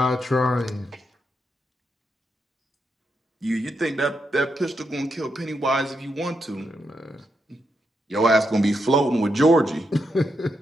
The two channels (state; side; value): normal; both; correlation 0.83